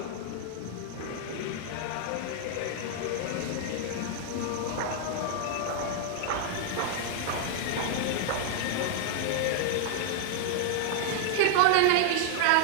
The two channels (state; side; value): different; both; correlation 0.00